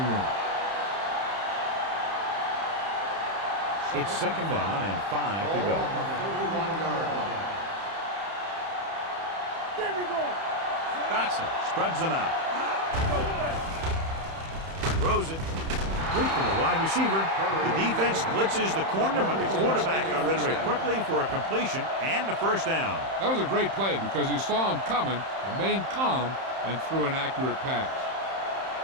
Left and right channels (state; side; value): late; left; 31 ms